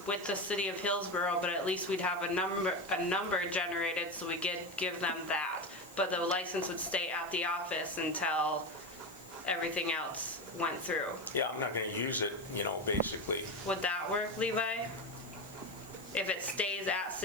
with the city of Hillsborough, but at least we'd have a number generated, so we give them that, but the license would stay at the office until everything else went through? Yeah, I'm not going to use it, basically. Would that work, Levi? If it stays at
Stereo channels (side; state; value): left; noise; hiss, 21 dB below the sound